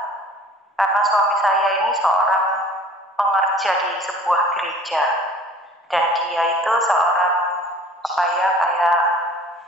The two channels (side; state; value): both; normal; correlation 0.48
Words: karena suami saya ini seorang pengerja di sebuah gereja dan dia itu seorang kayak